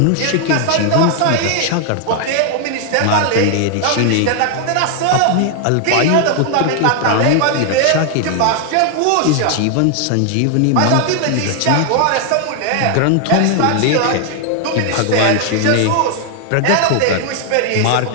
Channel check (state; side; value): different; both; correlation 0.00